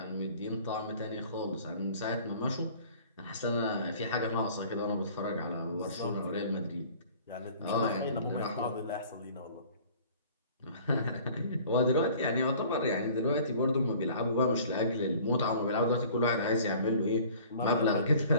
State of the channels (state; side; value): inverted; both; correlation -0.49